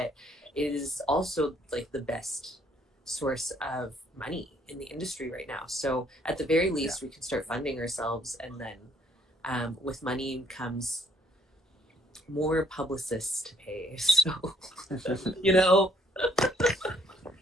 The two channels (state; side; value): normal; both; correlation 0.64